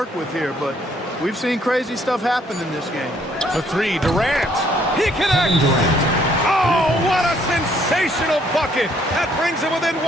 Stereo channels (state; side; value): normal; both; correlation 0.66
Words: with here, but we've seen crazy stuff happen in this game. The 3, Durant. He connects. Oh, what a sensational bucket. That brings him within